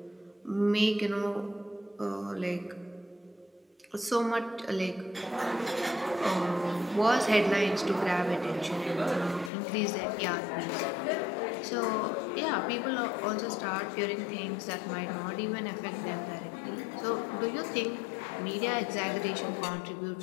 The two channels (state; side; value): drops out; right; at 9.5 s